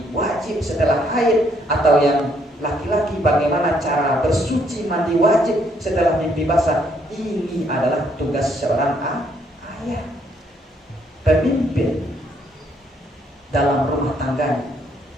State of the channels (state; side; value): normal; both; correlation 0.70